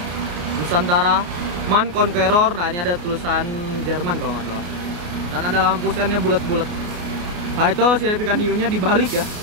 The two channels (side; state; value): left; late; 28 ms